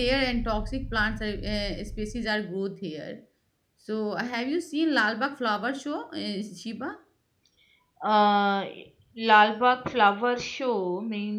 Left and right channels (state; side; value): identical; both; correlation 1.00